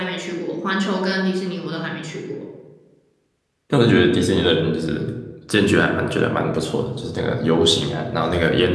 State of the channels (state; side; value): identical; both; correlation 1.00